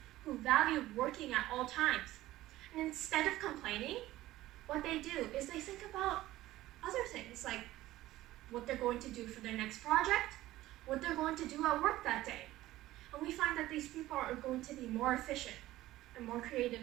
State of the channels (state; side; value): quieter; left; 16.0 dB